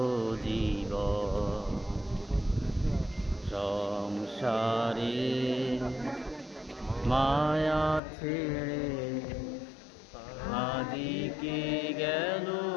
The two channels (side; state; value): right; drops out; at 8.0 s